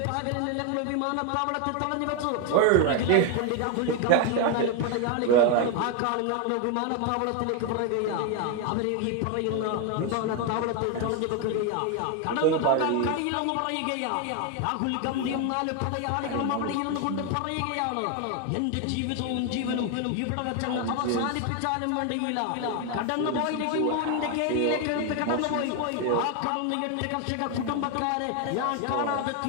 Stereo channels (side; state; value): both; different; correlation 0.01